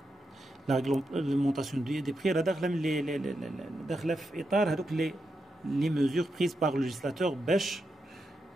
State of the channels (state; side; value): normal; both; correlation 0.86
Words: la réglementation des prix, elle a les mesures prises par le législateur